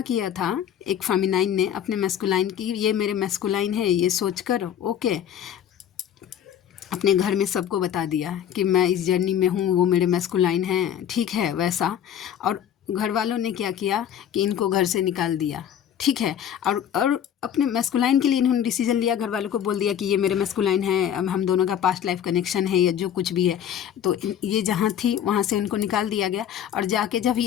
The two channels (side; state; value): right; quieter; 9.6 dB